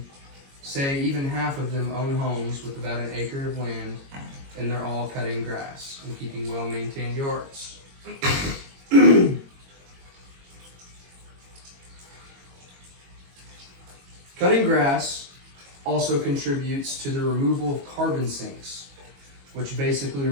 Say even half of them own homes with about an acre of land, and they're all cutting grass and keeping well-maintained yards. Cutting grass also contributes to the removal of carbon sinks, which basically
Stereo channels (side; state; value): left; late; 22 ms